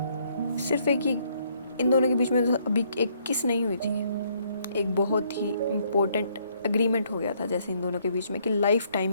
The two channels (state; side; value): inverted; both; correlation -0.69